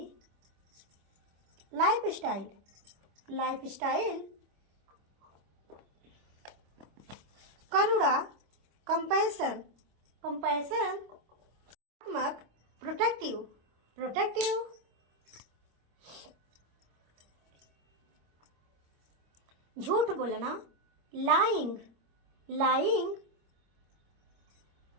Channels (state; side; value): late; left; 25 ms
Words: लाइफ स्टाइल, लाइफ स्टाइल, करुणा, कंपैशन, कंपैशन, प्रोटेक्टिव, प्रोटेक्टिव, झूठ बोलना, लाइंग, लाइंग,